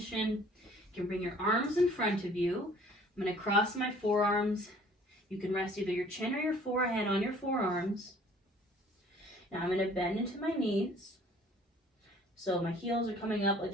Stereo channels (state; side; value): normal; both; correlation 0.54